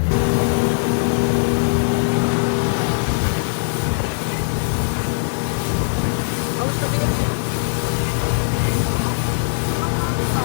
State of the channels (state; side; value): silent; right; digital silence